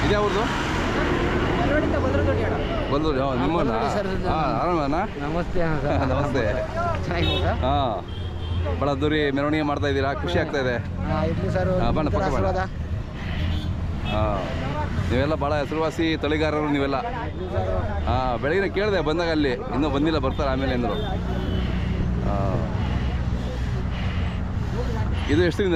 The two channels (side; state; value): both; identical; correlation 1.00